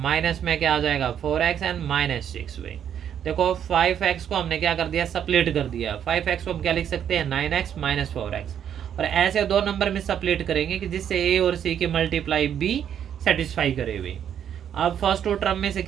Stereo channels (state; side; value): quieter; left; 9.2 dB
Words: में क्या आ जाएगा 4x एंड -6 भाई। देखो 5x को हमने क्या कर दिया सप्लीट कर दिया, 5x को हम क्या लिख सकते हैं 9x - 4x, और ऐसे दो नंबर में सप्लीट करेंगे कि जिससे a और c की मल्टीप्लाई b सेटिस्फाई करे भाई। अब फर्स्ट टू टर्म में से